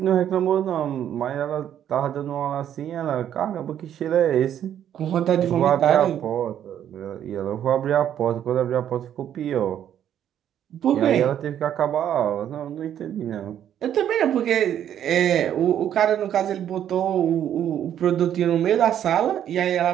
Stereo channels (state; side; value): quieter; left; 10.2 dB